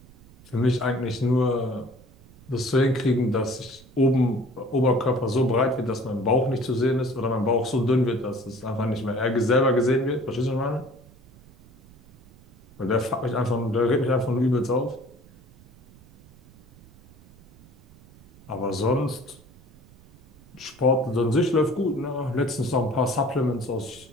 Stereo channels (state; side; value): noise; right; rumble, 25 dB below the sound